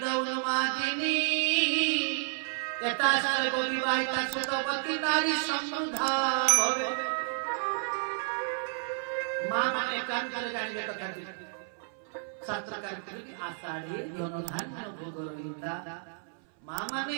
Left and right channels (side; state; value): left; silent; 57 dB below the other